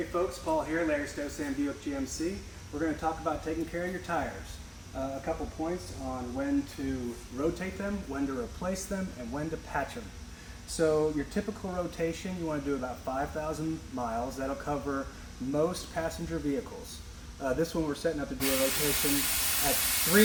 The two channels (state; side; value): identical; both; correlation 1.00